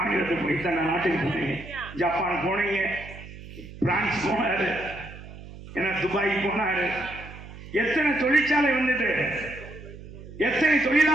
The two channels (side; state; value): right; noise; hum, 15 dB below the sound